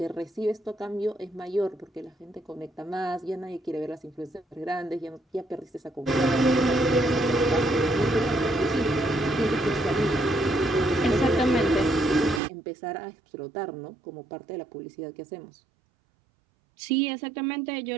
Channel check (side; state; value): left; drops out; at 12.4 s